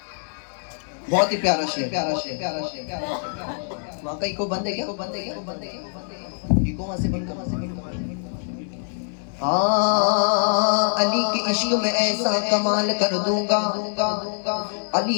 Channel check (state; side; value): silent; right; 63 dB below the other